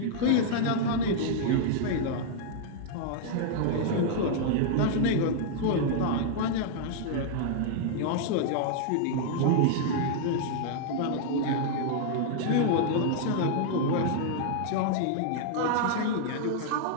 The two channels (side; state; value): both; different; correlation -0.01